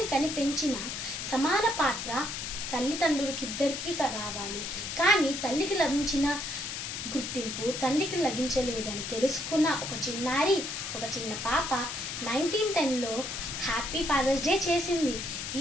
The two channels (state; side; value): noise; left; hiss, 5 dB below the sound